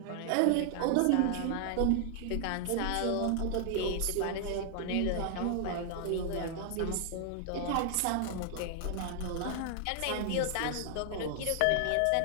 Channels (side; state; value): both; different; correlation 0.00